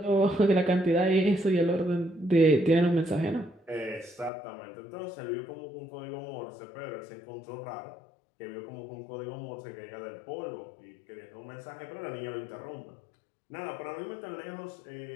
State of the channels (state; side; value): drops out; right; at 4.3 s